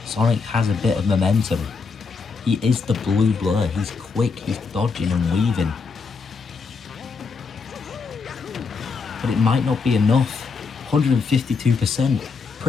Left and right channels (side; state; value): right; quieter; 4.9 dB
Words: Sonic has a bit of momentum. He is the blue blur. He's quick. He's dodging and weaving. But it might not be enough. 152%.